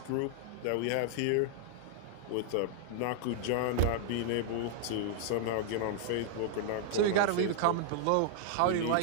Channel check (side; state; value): both; different; correlation -0.01